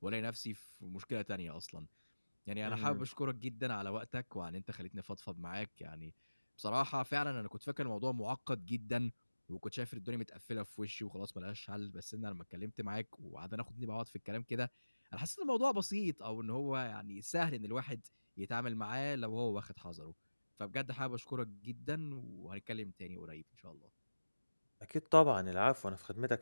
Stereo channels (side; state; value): both; inverted; correlation -1.00